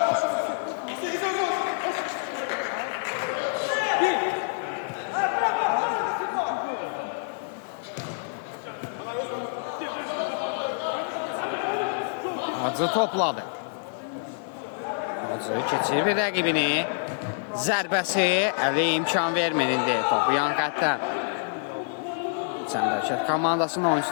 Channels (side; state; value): right; silent; digital silence